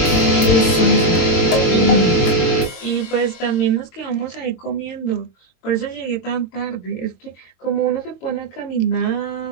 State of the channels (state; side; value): late; right; 22 ms